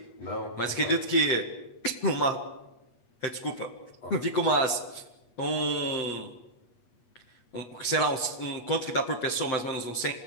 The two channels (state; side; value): late; right; 8.3 ms